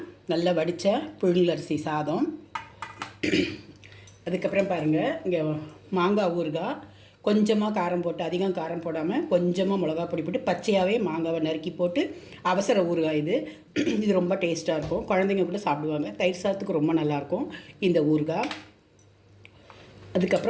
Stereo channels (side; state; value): both; identical; correlation 1.00